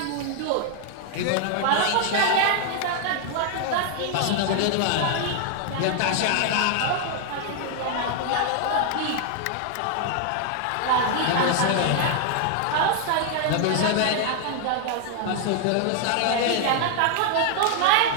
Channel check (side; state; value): both; different; correlation 0.00